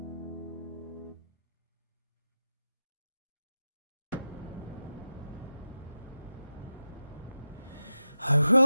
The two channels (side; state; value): both; inverted; correlation -0.93